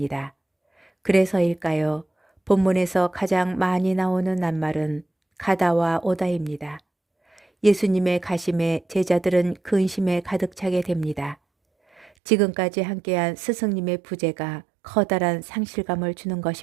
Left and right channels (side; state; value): left; drops out; at 12.1 s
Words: 그래서일까요? 본문에서 가장 많이 나오는 낱말은 가다와 오다입니다. 예수님의 가심에 제자들은 근심에 가득 차게 됩니다. 지금까지 함께한 스승님의 부재가 커다란 상실감을 주는